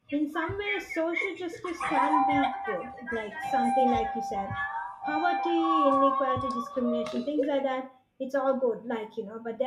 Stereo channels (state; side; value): identical; both; correlation 1.00